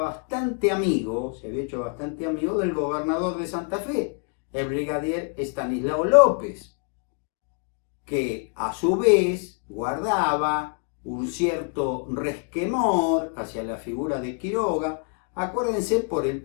amigo, se había hecho bastante amigo del gobernador de Santa Fe, el brigadier Estanislao López, que a su vez guardaba un cierto resquemor hacia la figura de Quiroga. Acuérdense por el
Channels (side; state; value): right; quieter; 39.2 dB